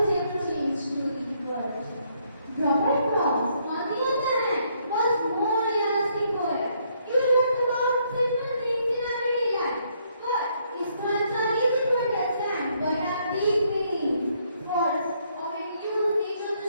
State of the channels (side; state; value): both; inverted; correlation -0.71